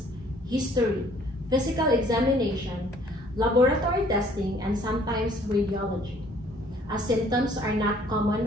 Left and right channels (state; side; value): normal; both; correlation 0.59